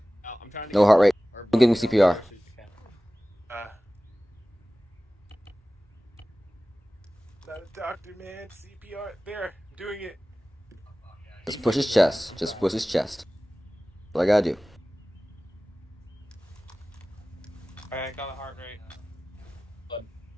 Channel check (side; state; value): both; normal; correlation 0.97